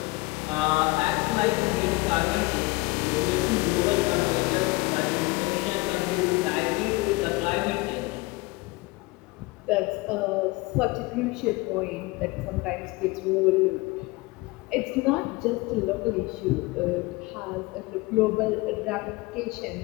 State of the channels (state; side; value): quieter; right; 23.4 dB